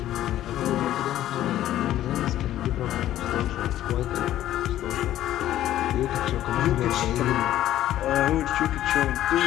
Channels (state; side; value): quieter; right; 13.0 dB